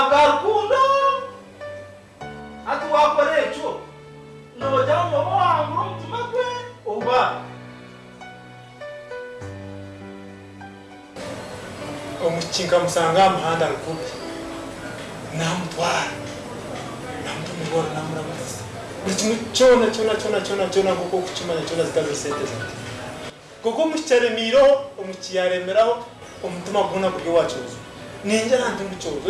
rukundo ati wakora ekyo nojya mu mwobo wangura omutima gwe oba omukinka musanga amahanda rukubi namutwara namutumibora namuramutsa buri kimwe cyona kuko kukimanya cyona zikaze sente zate kuko mukicaremiro omukiyaremeraho omutima guna buryo wacuza ninjye nantungucozo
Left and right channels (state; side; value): identical; both; correlation 1.00